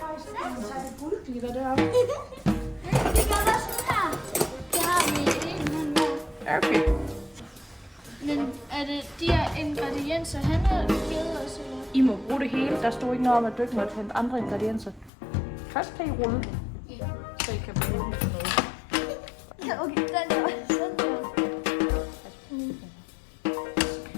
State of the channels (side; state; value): right; drops out; at 15.1 s